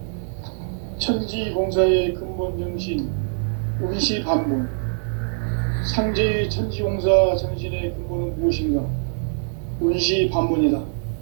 천지공사의 근본 정신 운시반본. 상제의 천지공사 정신의 근본은 무엇인가? 운시반본이다.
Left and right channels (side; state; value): left; silent; digital silence